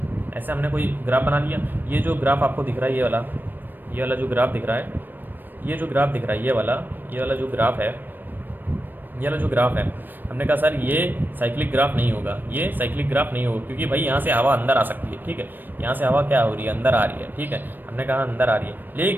ऐसे हमने कोई ग्राफ बना लिया। ये जो ग्राफ आपको दिख रहा है, ये वाला जो ग्राफ दिख रहा है, ये जो ग्राफ दिख रहा है, ये वाला जो ग्राफ है, ये वाला जो ग्राफ है, हमने कहा सर ये साइक्लिक ग्राफ नहीं होगा, ये साइक्लिक ग्राफ नहीं होगा, क्योंकि भाई यहाँ से हवा अंदर आ सकती है, ठीक है, यहाँ से हवा क्या हो रही है, अंदर आ रही है, ठीक है, हमने कहा अंदर आ रही है।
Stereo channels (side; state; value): left; late; 0.092 ms